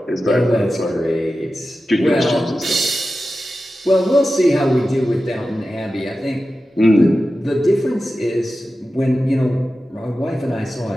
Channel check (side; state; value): both; normal; correlation 0.93